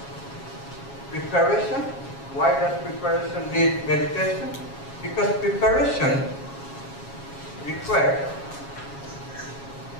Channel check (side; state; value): right; late; 7.3 ms